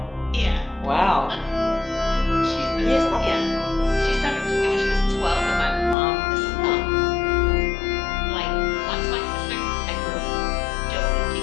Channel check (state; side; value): drops out; right; at 6.0 s